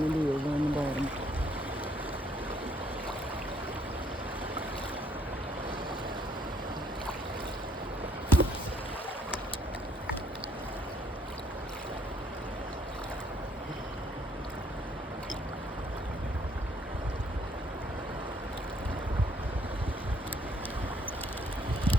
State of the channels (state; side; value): normal; both; correlation 0.67